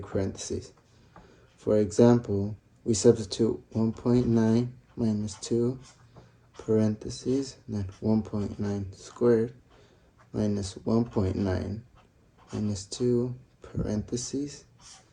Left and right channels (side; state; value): both; identical; correlation 1.00